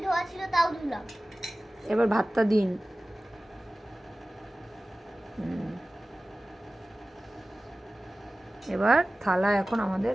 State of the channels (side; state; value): both; normal; correlation 0.97